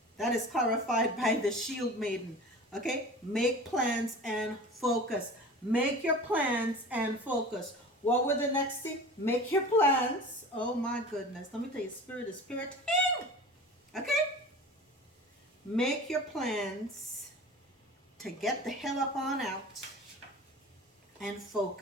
That is clarified by the Shield Maiden. Okay? Make plans and focus. Make your plans and focus. What were the next thing? Make your plans. Oh my goodness. Let me tell you, spirit is spiriting. Okay? Make your plans to get the hell up on out and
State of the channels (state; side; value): normal; both; correlation 0.37